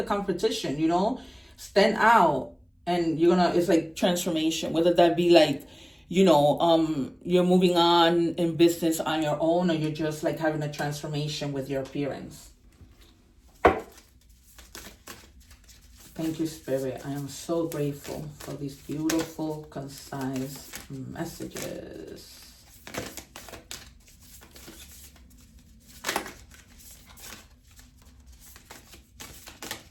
competition, you know, stand out. And you're gonna, it's like transformation, whether that be like, you know, you're moving on in business on your own, or you're just like having a transformation with your appearance. Thank you, Spirit. I am so grateful for these beautiful, concise messages.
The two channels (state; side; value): identical; both; correlation 1.00